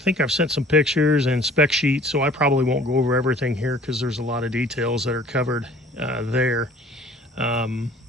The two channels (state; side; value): normal; both; correlation 0.50